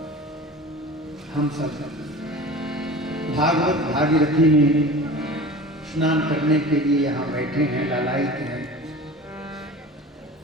हम सब भागवत भागीरथी में स्नान करने के लिए यहाँ बैठे हैं, लालायित हैं।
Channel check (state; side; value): normal; both; correlation 0.37